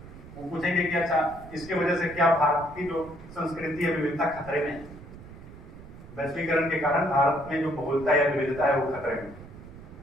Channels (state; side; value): noise; right; rumble, 17 dB below the sound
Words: वो पूछेंगे कि अच्छा इसके वजह से क्या भारत की जो संस्कृति है विविधता खतरे में है, वैश्वीकरण के कारण भारत में जो बहुलता या विविधता है वो खतरे में।